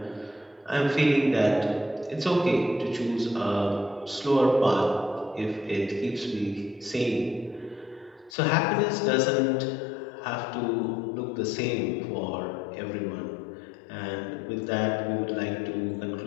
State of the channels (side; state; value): right; drops out; at 8.3 s